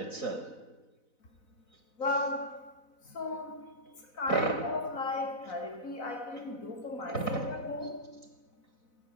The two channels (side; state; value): right; late; 4.0 ms